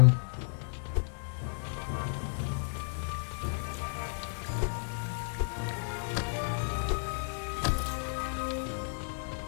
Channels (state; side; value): silent; right; digital silence